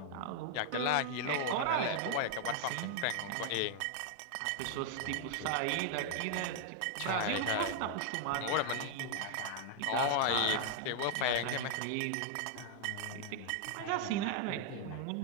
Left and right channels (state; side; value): different; both; correlation 0.00